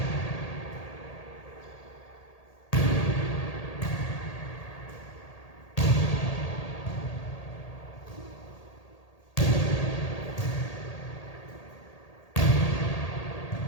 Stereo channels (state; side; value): late; right; 1.8 ms